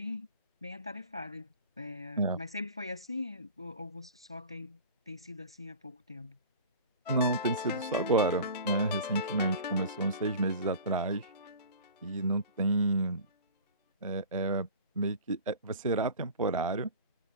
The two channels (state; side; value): inverted; both; correlation -0.40